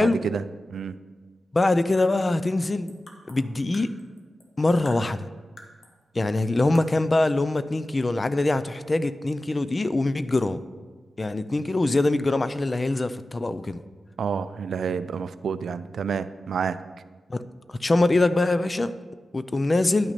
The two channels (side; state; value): both; normal; correlation 0.95